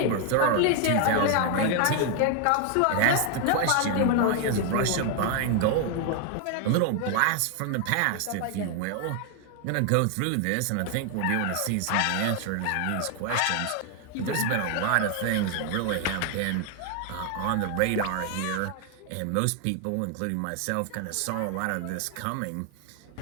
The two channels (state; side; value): different; both; correlation 0.00